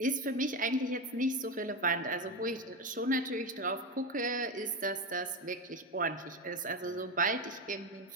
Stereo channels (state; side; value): normal; both; correlation 0.15